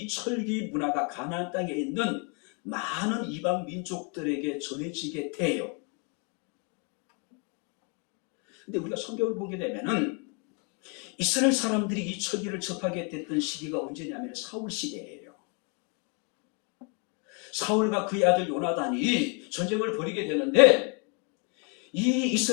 철기 문화가 가나안 땅에 있는 많은 이방 민족들에게 전해지게 돼요. 근데 우리가 성경을 보게 되면은 이스라엘 사람들이 이 철기를 접하게 됐던 시기가 언제냐면 사울 시대예요. 사울과 그의 아들 요나단이 전쟁을 벌이게 되는데 이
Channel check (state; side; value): quieter; right; 35.9 dB